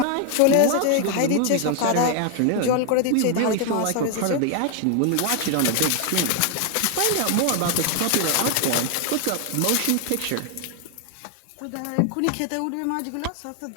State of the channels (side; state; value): both; different; correlation 0.00